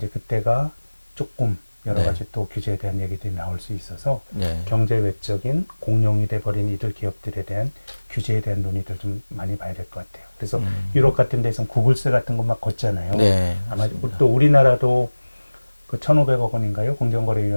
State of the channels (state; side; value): inverted; both; correlation -1.00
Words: 그때가 조금 여러 네. 가지 또 규제에 대한 얘기들이 나올 수 있어서 네. 경제 외적인 공룡이 돼버린 이들 기업들에 대한 규제에 대한 논의들 좀 많이 봐야 될 것 같아요. 그래서 유럽 같은 데서는 구글세 같은 거 막 걷잖아요. 네. 아마 맞습니다. 또 우리나라도 그 1,500억 원인가요?